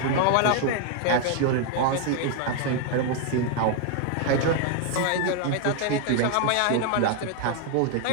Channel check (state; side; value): different; both; correlation 0.00